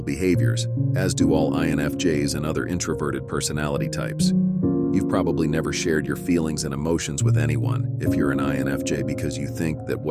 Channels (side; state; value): both; identical; correlation 1.00